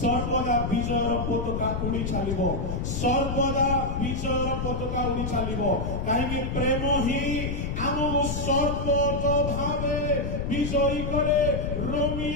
विजयर पताका उड़ी चलिबो सर्वदा विजयर पताका उड़ी चलिबो काहेकि प्रेम ही हमको सर्वतो भावे विजयी करे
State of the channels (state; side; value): noise; left; rumble, 2 dB below the sound